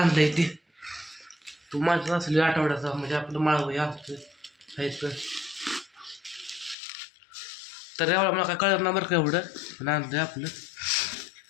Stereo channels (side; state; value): right; drops out; at 6.8 s